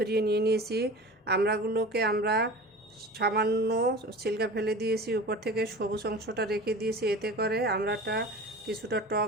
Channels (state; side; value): normal; both; correlation 0.36